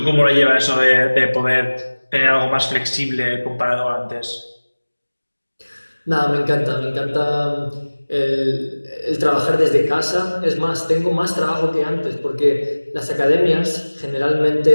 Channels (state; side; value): inverted; both; correlation -1.00